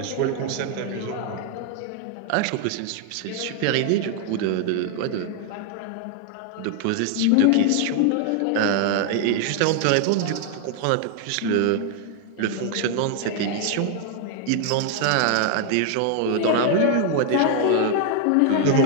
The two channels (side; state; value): both; different; correlation 0.00